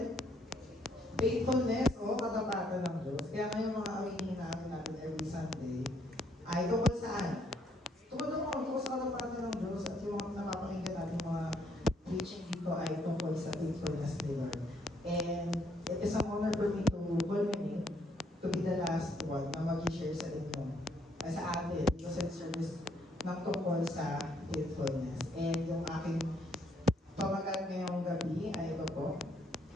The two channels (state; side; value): normal; both; correlation 0.70